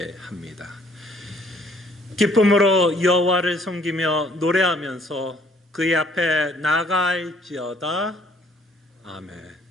기쁨으로 여호와를 섬기며 노래하면서 그의 앞에 나아갈지어다. 아멘.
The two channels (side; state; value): both; normal; correlation 0.62